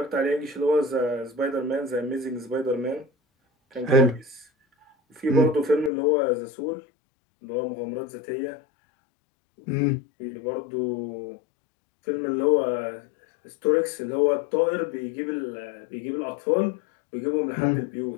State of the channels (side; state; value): right; drops out; at 5.9 s